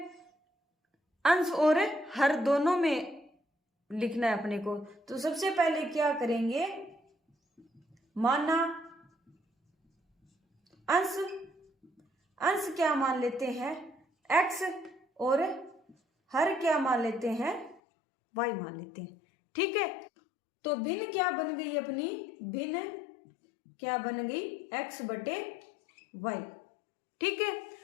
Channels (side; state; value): right; drops out; at 17.8 s